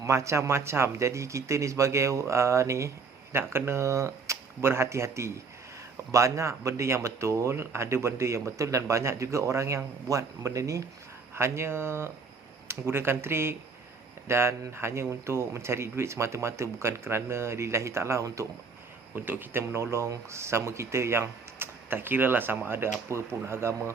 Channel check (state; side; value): quieter; left; 4.8 dB